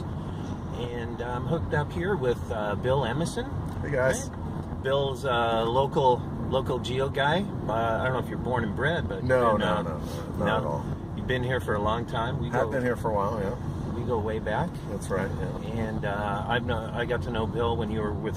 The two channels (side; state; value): both; identical; correlation 1.00